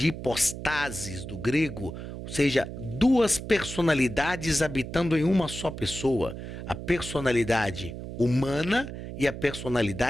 hipostasis, do grego, ou seja, duas personalidades habitando em uma só pessoa. A personalidade humana e a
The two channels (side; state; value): right; noise; hum, 9 dB below the sound